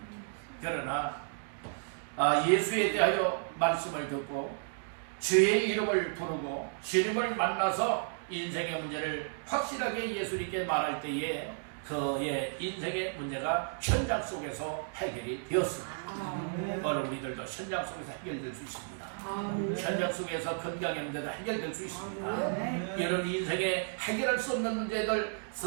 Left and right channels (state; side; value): silent; left; digital silence